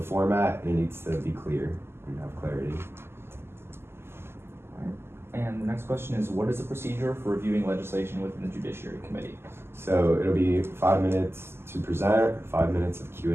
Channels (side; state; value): left; late; 0.12 ms